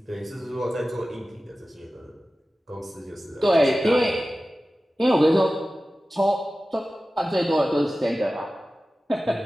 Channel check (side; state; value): both; normal; correlation 0.96